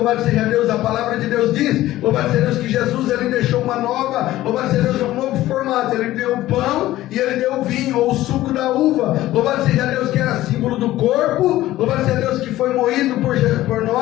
seja Deus, a palavra de Deus diz, louvado seja Deus, que Jesus, ele deixou uma nova, louvado seja Deus, um novo formato. Ele deu o pão e ele deu o vinho, ou o suco da uva. Louvado seja Deus, que era símbolo do corpo, louvado seja Deus, que foi moído por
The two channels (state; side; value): quieter; right; 15.4 dB